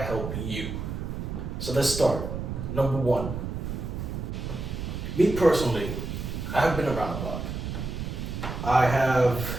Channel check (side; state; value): right; noise; rumble, 5 dB below the sound